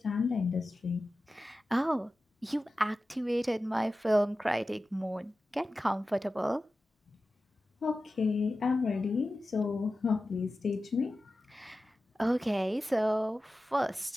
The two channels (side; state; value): both; normal; correlation 0.94